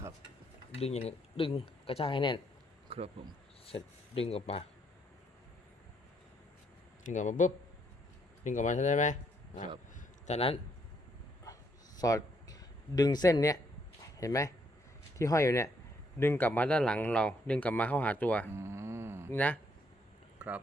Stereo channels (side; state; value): both; normal; correlation 0.72